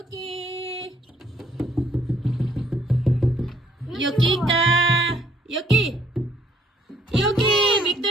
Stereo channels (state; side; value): normal; both; correlation 0.65